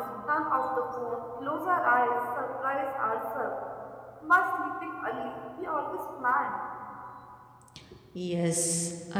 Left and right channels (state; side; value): identical; both; correlation 1.00